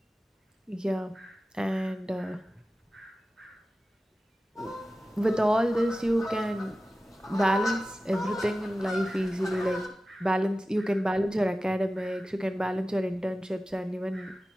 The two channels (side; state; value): both; normal; correlation 0.95